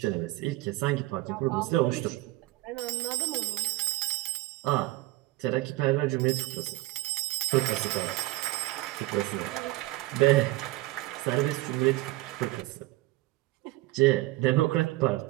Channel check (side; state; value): left; quieter; 19.1 dB